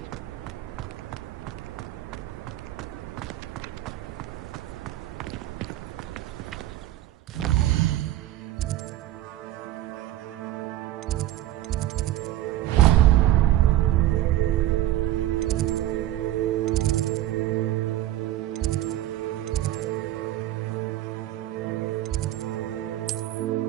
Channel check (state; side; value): quieter; left; 14.0 dB